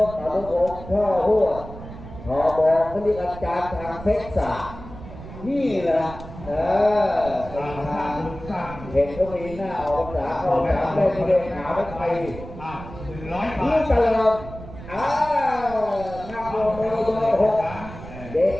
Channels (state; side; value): noise; right; rumble, 14 dB below the sound